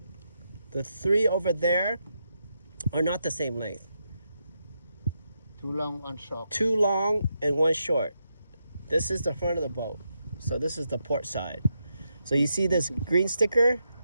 The 3 over there are not the same length. 2 long, 1 short. 2 long and 1 short. This is the front of the boat. So this is the port side. So you see this green sticker?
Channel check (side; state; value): both; inverted; correlation -0.83